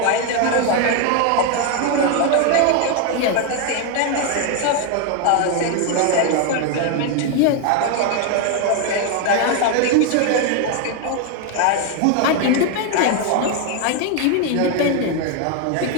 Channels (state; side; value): different; both; correlation 0.01